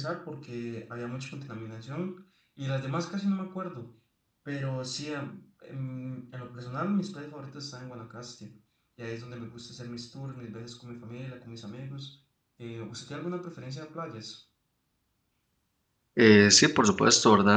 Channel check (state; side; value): identical; both; correlation 1.00